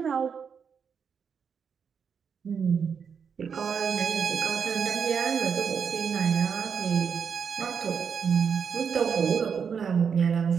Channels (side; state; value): left; quieter; 6.6 dB